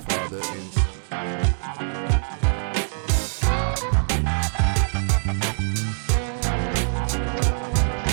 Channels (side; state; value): left; silent; digital silence